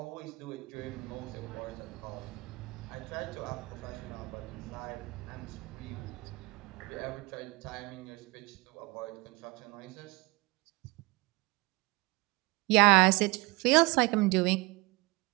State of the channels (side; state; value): left; quieter; 24.4 dB